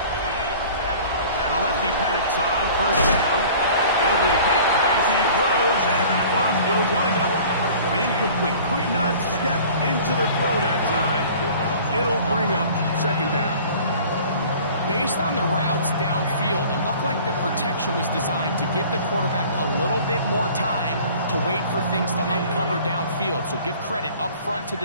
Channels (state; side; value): inverted; both; correlation -0.47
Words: Simply could not step into the throw that time. It'll bring up second down. Based on the routes downfield, it looked like the protection was designed to give the quarterback a little bit more time to wait for things to uncover downfield. So give credit up front to